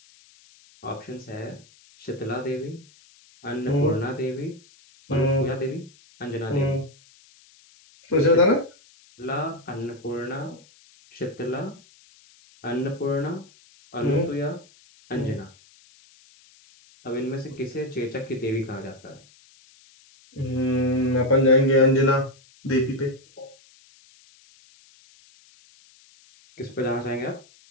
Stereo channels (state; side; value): noise; left; hiss, 27 dB below the sound